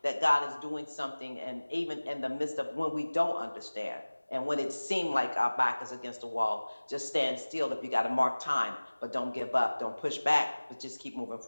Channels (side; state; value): both; inverted; correlation -1.00